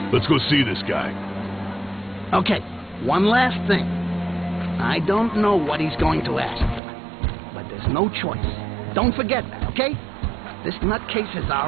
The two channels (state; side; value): drops out; left; at 6.8 s